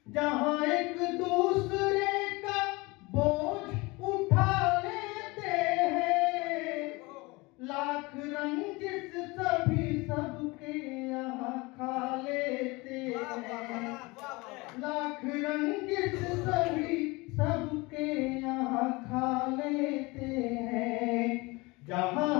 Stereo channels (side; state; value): right; quieter; 24.3 dB